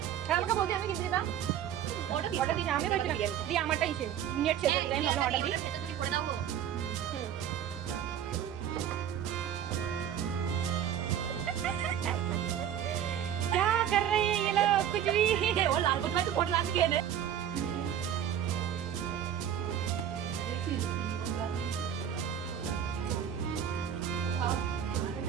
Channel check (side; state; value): left; quieter; 9.7 dB